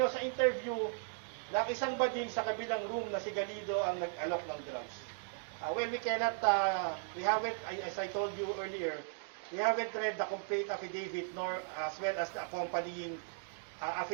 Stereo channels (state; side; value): silent; left; digital silence